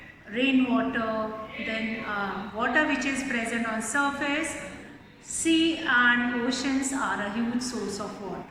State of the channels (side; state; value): both; identical; correlation 1.00